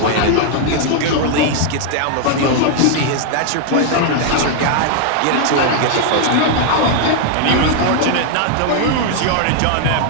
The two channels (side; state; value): both; different; correlation 0.00